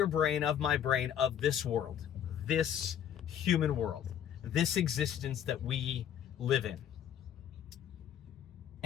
brain, of my brain, of this world, this human world, this existence that we live in.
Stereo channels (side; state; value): right; quieter; 9.6 dB